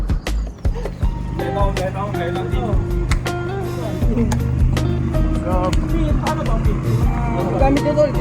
Gamit nyo tol,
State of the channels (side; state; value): both; identical; correlation 1.00